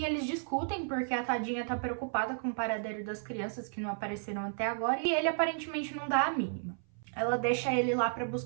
eles discutem porque a tadinha tá preocupada com o paradeiro das crianças que não apareceram até agora e ele aparentemente não dá a mínima. Ela deixa ele lá pra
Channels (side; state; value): left; silent; 56 dB below the other